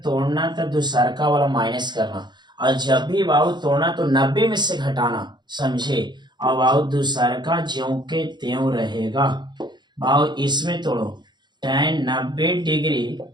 तोड़ना तो दूसरका वाला माइनस करना, और जब भी बाबू तोड़ना तो 90 में से घटाना, समझे। और बाबू दूसरका ज्यों के त्यों रहेगा। बाबू इसमें तोड़ो tan 90 डिग्री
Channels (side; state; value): left; late; 0.21 ms